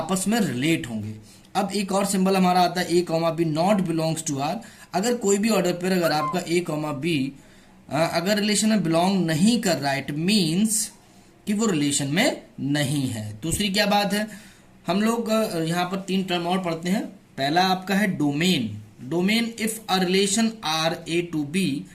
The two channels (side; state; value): both; identical; correlation 1.00